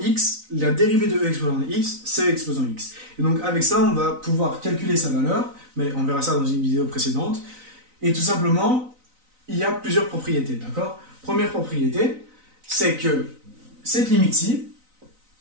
la dérivée de E exposant x, c'est E exposant x. Et donc avec ça, on va pouvoir calculer sa valeur, mais on verra ça dans une vidéo précédente. Et tout simplement, il y a plusieurs propriétés, d'accord? Première propriété, c'est que cette limite-ci,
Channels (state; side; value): late; left; 3.9 ms